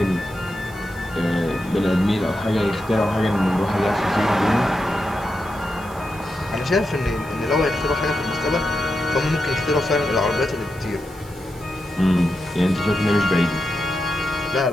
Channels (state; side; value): noise; right; hiss, 22 dB below the sound